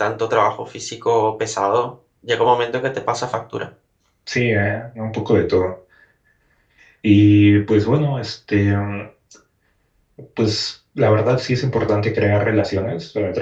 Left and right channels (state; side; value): identical; both; correlation 1.00